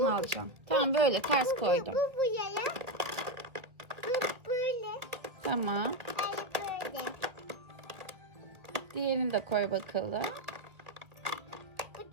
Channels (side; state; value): left; late; 2.0 ms